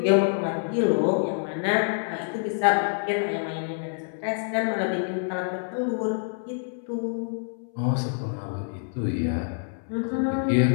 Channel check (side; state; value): right; silent; 61 dB below the other